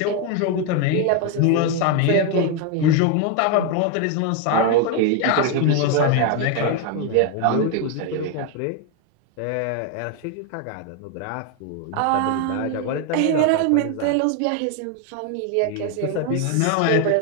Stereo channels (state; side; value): different; both; correlation 0.01